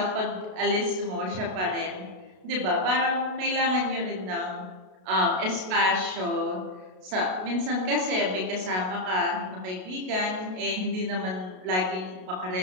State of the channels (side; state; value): left; late; 32 ms